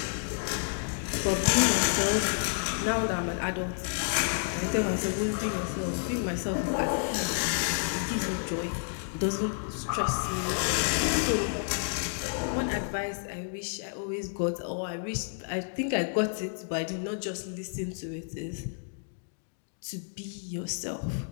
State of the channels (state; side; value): silent; right; digital silence